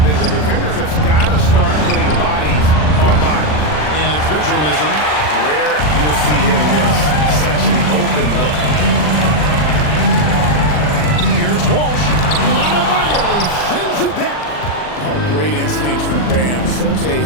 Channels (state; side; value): late; right; 40 ms